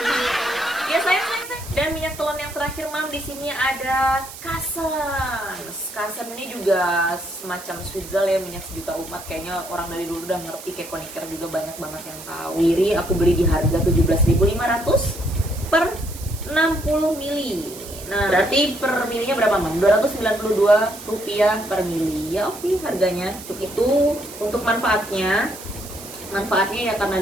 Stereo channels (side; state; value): right; noise; hiss, 14 dB below the sound